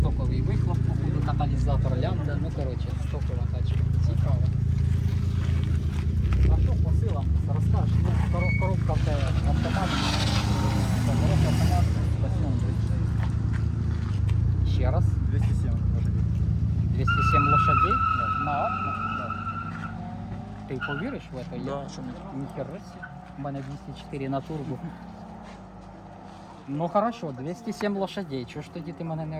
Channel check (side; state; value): both; identical; correlation 1.00